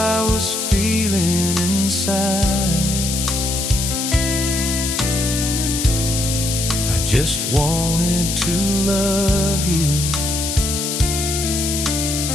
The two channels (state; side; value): noise; left; hiss, 2 dB below the sound